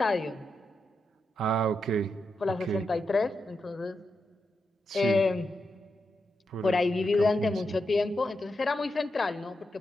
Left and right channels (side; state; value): both; normal; correlation 0.86